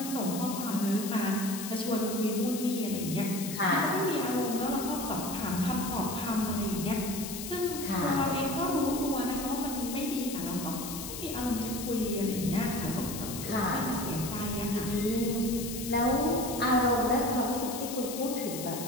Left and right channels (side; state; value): left; noise; hiss, 8 dB below the sound